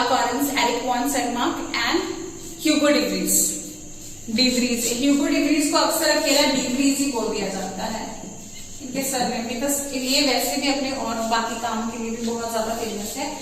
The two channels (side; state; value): both; identical; correlation 1.00